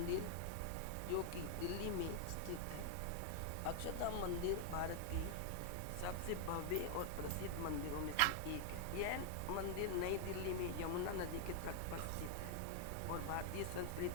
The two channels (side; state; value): both; different; correlation 0.00